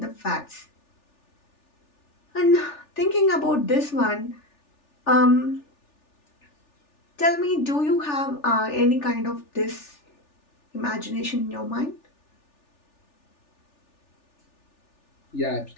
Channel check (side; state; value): right; late; 3.4 ms